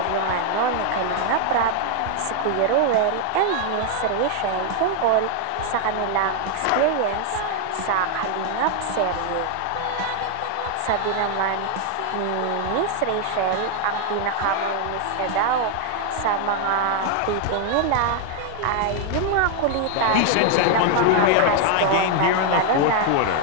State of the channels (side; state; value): both; different; correlation 0.00